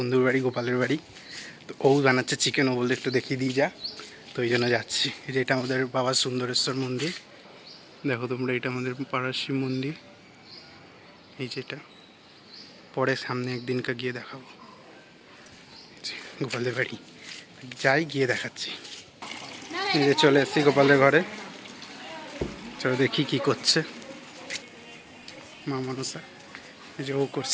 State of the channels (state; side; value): identical; both; correlation 1.00